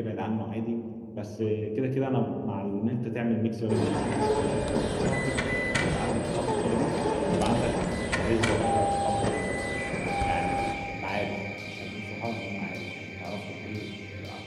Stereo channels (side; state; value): both; identical; correlation 1.00